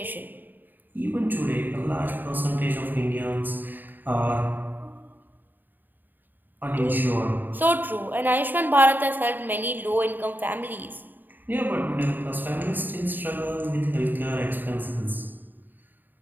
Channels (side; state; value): left; late; 0.090 ms